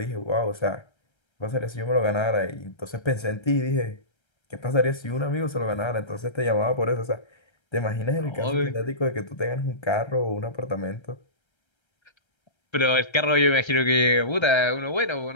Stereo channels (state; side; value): late; right; 1.3 ms